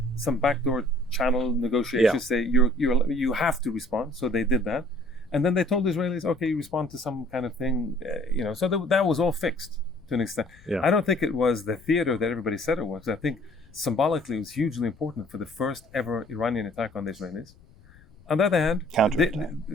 some backdoor channel negotiations. Say you have to respond, so they did that, and then they told the Israelis, okay, you respond to some kind of thing, So that was all fixed to an extent. Yeah. I don't think it was the theater that everybody said it was. I think symbolically it was hugely important for the first ever Iranian attack on the Israelis. On the other hand,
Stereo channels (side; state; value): left; noise; rumble, 25 dB below the sound